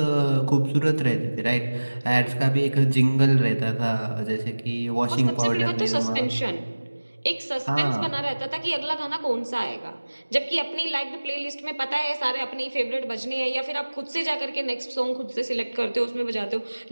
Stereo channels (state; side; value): inverted; both; correlation -1.00